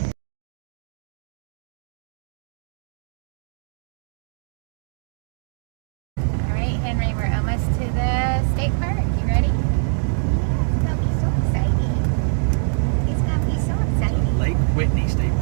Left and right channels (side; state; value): left; silent; digital silence